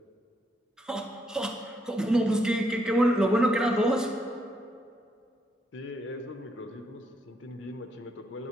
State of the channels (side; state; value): both; normal; correlation 0.76